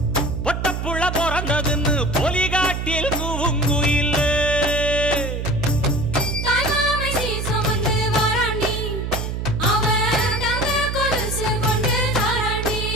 பொட்டப்புள்ள பிறந்ததுன்னு பொலிகாட்டில் கூங்குயில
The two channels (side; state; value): right; noise; hum, 3 dB below the sound